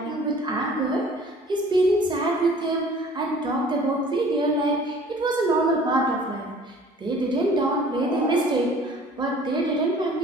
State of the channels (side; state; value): both; normal; correlation 0.50